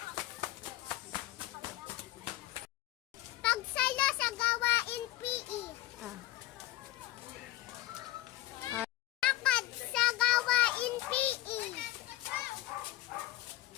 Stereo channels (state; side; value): quieter; right; 16.8 dB